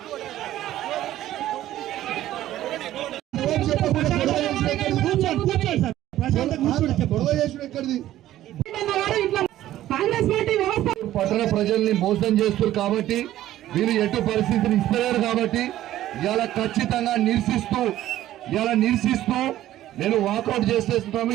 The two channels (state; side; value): quieter; left; 13.7 dB